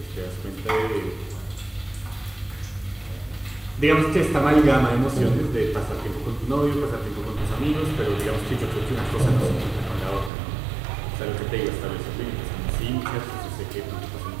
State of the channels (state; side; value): drops out; left; at 10.3 s